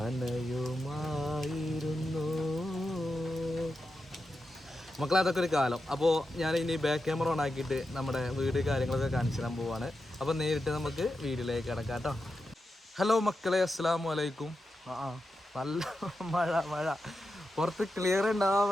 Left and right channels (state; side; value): normal; both; correlation 0.89